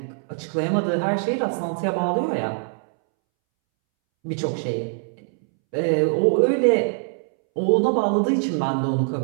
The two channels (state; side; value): silent; left; 63 dB below the other